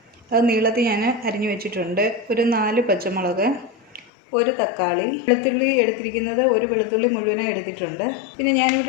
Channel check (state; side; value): drops out; right; at 4.1 s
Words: അത് നീളത്തിൽ ഞാൻ അരിഞ്ഞു വെച്ചിട്ടുണ്ട്. ഒരു 4 പച്ചമുളക്, ഒരു തക്കാളി, വെളുത്തുള്ളി എടുത്തിരിക്കുന്നത് ഒരു വെളുത്തുള്ളി മുഴുവനായി എടുത്തിട്ടുണ്ട്. പിന്നെ